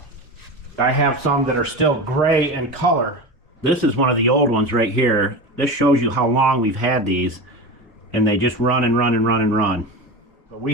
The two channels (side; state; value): both; normal; correlation 0.25